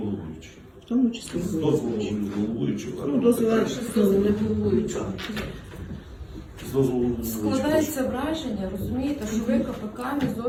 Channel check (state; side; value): identical; both; correlation 1.00